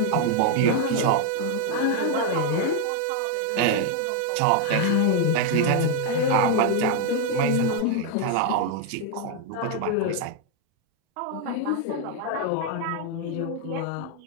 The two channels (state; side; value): different; both; correlation 0.00